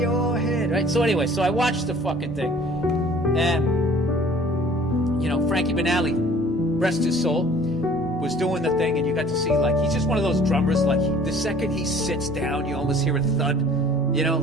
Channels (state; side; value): normal; both; correlation 0.51